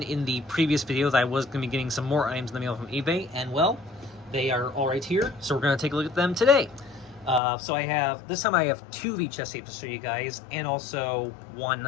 in the previous video that I was going to be getting some more items in the mail from eBay, and well, they are all right here, so we're going to take a look at them today. This time I have 2 VHS tapes to show you guys, and also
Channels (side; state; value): right; drops out; at 7.4 s